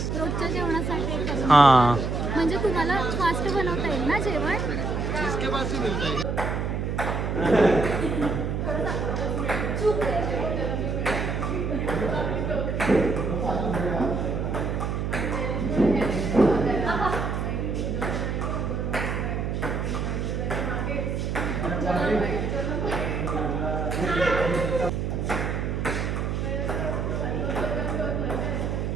रोजच्या जेवणासाठी करून. हां, म्हणजे तुम्हाला फास्ट बनवता येईल ना जेवण.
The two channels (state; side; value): noise; right; hum, 1 dB below the sound